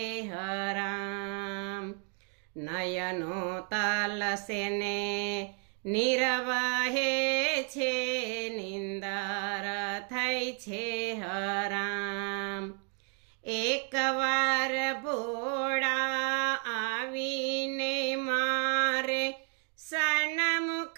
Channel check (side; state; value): left; quieter; 35.2 dB